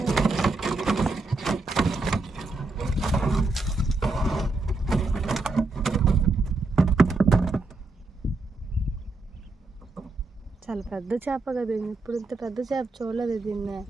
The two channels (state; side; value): quieter; left; 3.3 dB